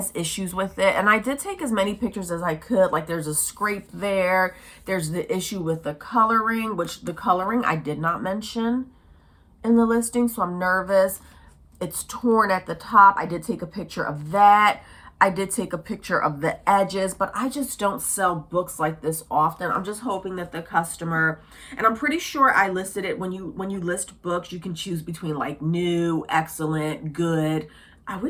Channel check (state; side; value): identical; both; correlation 1.00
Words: issues with it. And I did take as many pictures as I could. Like there's a scrape there. There's the issue with the coloring, which the coloring I did not mention in the listing. So I'm nervous. It's torn at the top. I did take a picture of that. I did take a picture of the edges, but I just don't sell books like this often. I'm just hoping that the customer, and I'm pretty sure I listed it when you list books, you can choose between like new, excellent, good. I